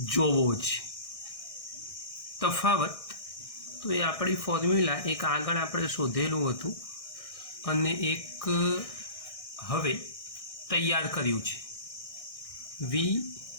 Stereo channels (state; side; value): late; right; 1.6 ms